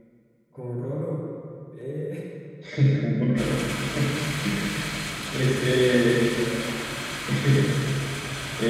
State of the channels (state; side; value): identical; both; correlation 1.00